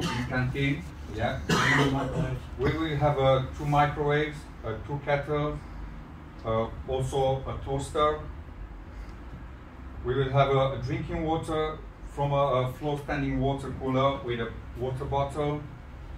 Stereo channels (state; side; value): identical; both; correlation 1.00